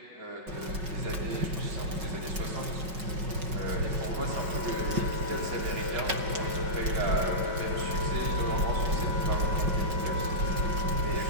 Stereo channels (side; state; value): left; late; 5.3 ms